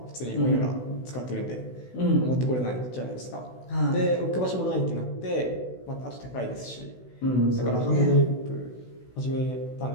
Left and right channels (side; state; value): right; late; 16 ms